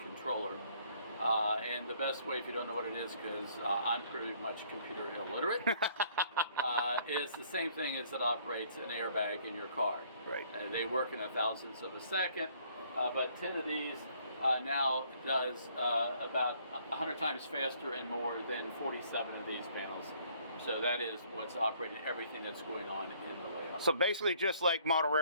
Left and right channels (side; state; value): both; inverted; correlation -0.62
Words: controller. And the best way, if you don't know what it is, because I'm pretty much computer illiterate, is the same thing as it operates an airbag in your car. Right. They work in 1,000ths of a second, but 10 of these now does about 100 times faster and more than 47 of these panels. So that is what's operating everything that's going on in the layout. So basically, just like model